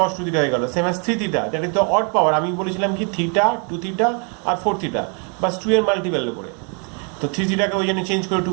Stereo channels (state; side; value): quieter; left; 37.4 dB